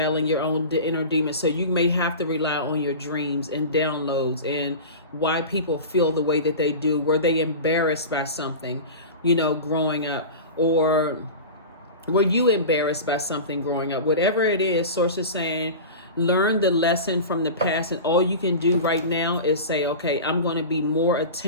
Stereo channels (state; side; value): inverted; both; correlation -0.30